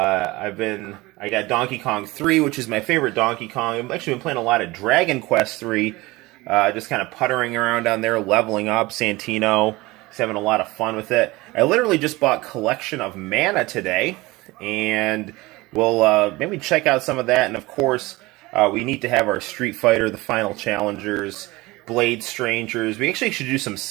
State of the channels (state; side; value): quieter; left; 21.1 dB